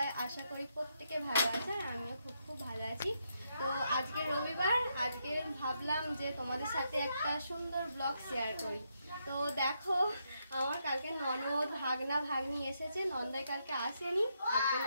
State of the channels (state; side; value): inverted; both; correlation -0.80